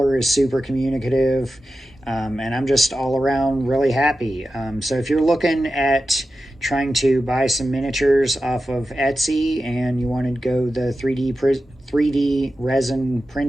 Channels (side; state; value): both; normal; correlation 0.92